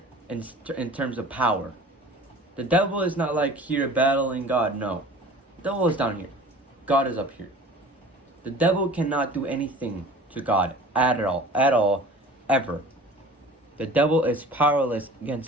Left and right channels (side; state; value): both; normal; correlation 0.44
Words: in terms of power. The devil is not like here battling God. No, the devil is down here, God is up here. The devil cannot do anything to God at all, ever. The devil is powerless